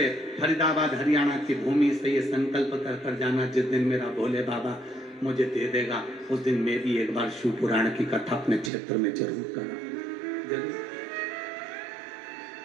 फरीदाबाद हरियाणा की भूमि से ये संकल्प कर जाना, जिस दिन मेरा भोले बाबा मुझे दे देगा, उस दिन मैं भी एक बार शिव पुराण की कथा अपने क्षेत्र में जरूर करूंगा, जरूर।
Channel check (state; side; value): drops out; left; at 8.7 s